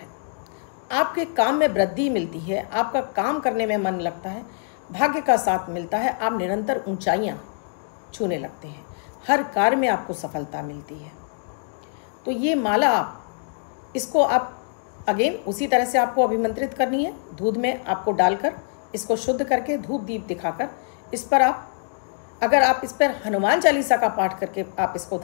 आपके काम में वृद्धि मिलती है, आपका काम करने में मन लगता है, भाग्य का साथ मिलता है, आप निरंतर ऊंचाइयां छूने लगते हैं, हर कार्य में आपको सफलता मिलती है। तो ये माला इसको आप अगेन उसी तरह से आपको अभिमंत्रित करनी है। दूध में आपको डालकर इसको शुद्ध करके धूप दीप दिखाकर इस पर आप अगर आप इस पर हनुमान चालीसा का पाठ करके आप इसको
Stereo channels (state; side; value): silent; right; digital silence